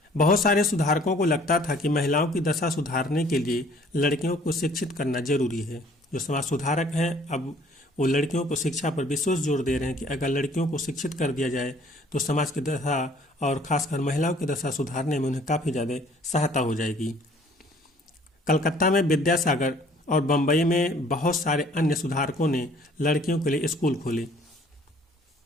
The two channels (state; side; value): normal; both; correlation 0.56